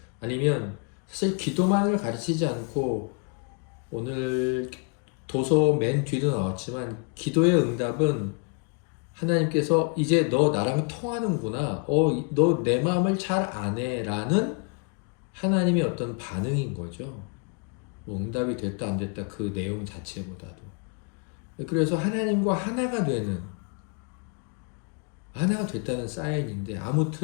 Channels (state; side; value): quieter; right; 35.9 dB